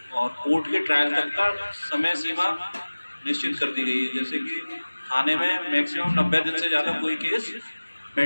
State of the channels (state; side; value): inverted; both; correlation -1.00